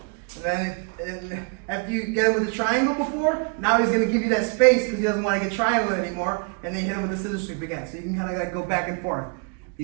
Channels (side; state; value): left; quieter; 36.0 dB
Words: And then after you get it with the triangle before, now he's going to give you that space because he doesn't want to get triangle anymore, and then you hit him with the scissor sweep again. So you can kind of like go back and forth.